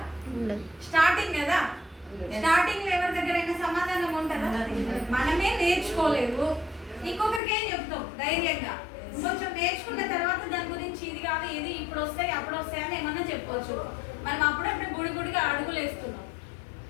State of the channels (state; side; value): drops out; right; at 7.4 s